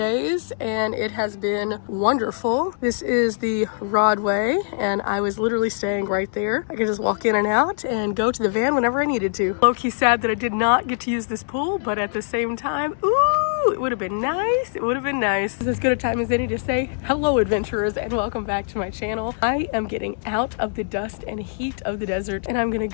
and it has been wonderful. This is the Rodway and I was literally staying right there. I could just walk in and out and go to the van whenever I needed to. Low-key sad that I did not get to use this pool, but at the same time, ooh, it would have been nice. It would have been nice. This is as good a time as any to say hello, adventurers, and welcome back to my channel. I am getting out of the dust and heat of the desert and I'm gonna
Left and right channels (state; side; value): silent; right; digital silence